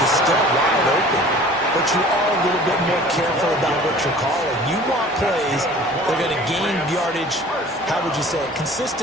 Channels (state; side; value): normal; both; correlation 0.46